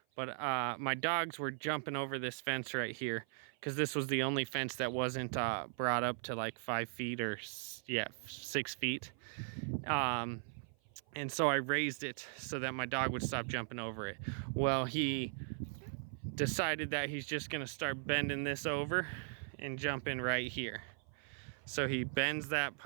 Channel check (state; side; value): silent; left; 52 dB below the other